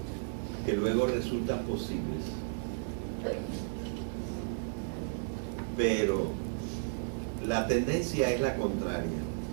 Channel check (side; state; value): left; silent; digital silence